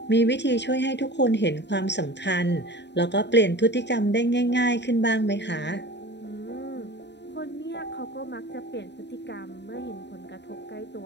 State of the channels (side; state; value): right; late; 0.50 ms